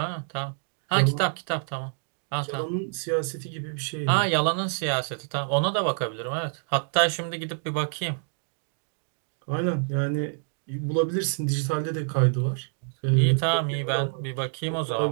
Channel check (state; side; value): silent; left; digital silence